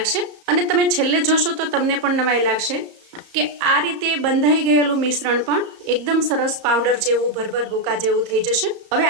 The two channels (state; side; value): late; left; 34 ms